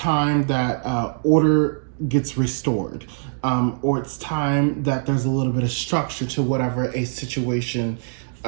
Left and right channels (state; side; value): silent; left; digital silence